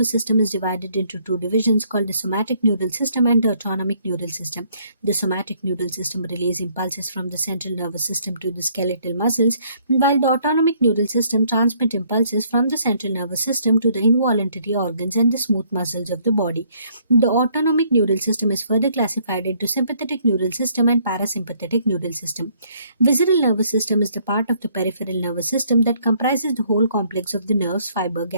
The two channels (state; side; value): inverted; both; correlation -0.65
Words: system is divided into two divisions called the somatic neural system and the autonomic neural system. The somatic neural system relays impulses from the central nervous system to the skeletal muscles, while the autonomic neural system transmits impulses from the central nervous system to the involuntary organs and the smooth muscles of the body. The autonomic neural system is further classified into sympathetic neural system and parasympathetic neural system. Visceral nervous system is the part of the peripheral nervous system that comprises the whole complex of the nerves, fiber,